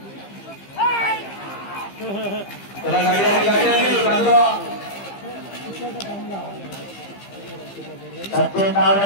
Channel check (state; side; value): late; right; 15 ms